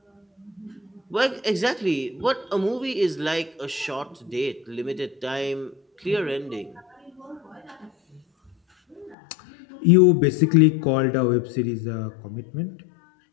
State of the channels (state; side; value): drops out; right; at 9.2 s